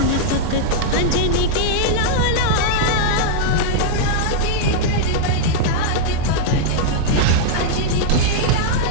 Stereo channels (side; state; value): both; different; correlation -0.02